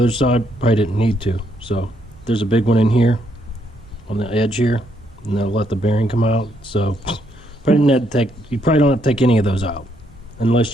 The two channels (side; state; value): both; normal; correlation 0.74